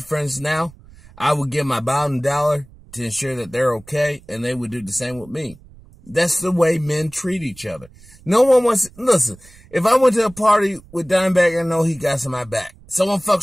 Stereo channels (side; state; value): right; noise; rumble, 24 dB below the sound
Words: friends now. I would give my bottom dollar to ensure that they're okay, and they would do the same with me. That's the way men treat each other. No one wants, listen, if I went to a party with Dimebag, I know he got some my back. Someone